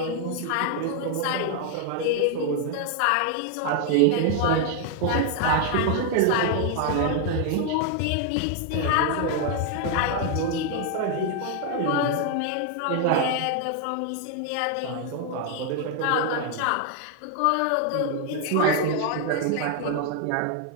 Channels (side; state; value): both; different; correlation 0.00